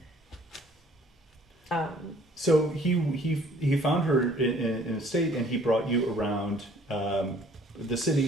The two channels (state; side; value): normal; both; correlation 0.57